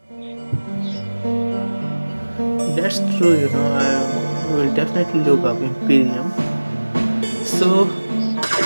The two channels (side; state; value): both; inverted; correlation -1.00